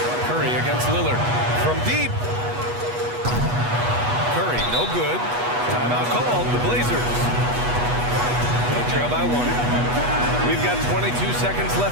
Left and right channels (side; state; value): left; late; 8.2 ms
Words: Curry against Lillard. From deep. Curry, no good. Timeout called, the Blazers. They trail by 1. We've got 22 seconds